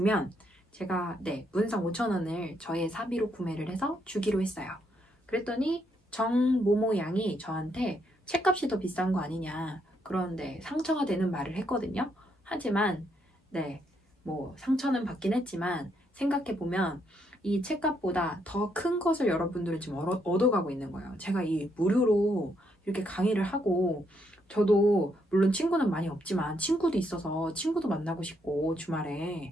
제가 문상 5,000원을 저의 사비로 구매를 해서 주기로 했어요. 그랬더니 정모모 양이 저한테 책값이 더 비싼 거 아니냐, 그런데 상처가 되는 말을 했거든요. 하지만 뭐 상처는 받긴 했지만 생각해보면 이 책값보다 더 큰 것을 여러분들은 지금 얻어가고 있는 거예요. 제가 이 무료로 이렇게 강의를 하고, 저도 물론 친구는 많이 없지만 친구도 있어서 친구도 만나고 싶고, 주말에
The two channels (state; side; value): normal; both; correlation 0.75